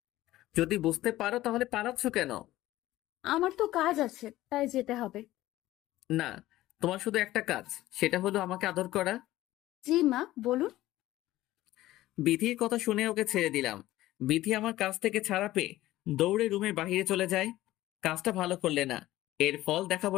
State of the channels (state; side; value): quieter; right; 15.9 dB